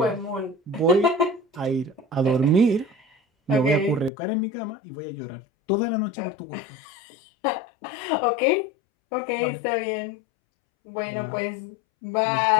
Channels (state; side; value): drops out; right; at 4.1 s